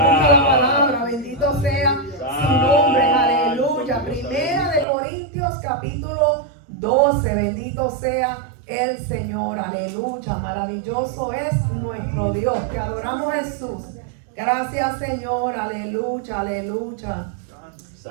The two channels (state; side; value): drops out; left; at 4.9 s